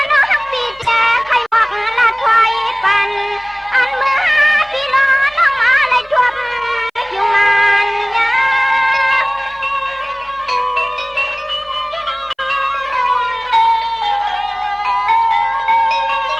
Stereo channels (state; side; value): identical; both; correlation 1.00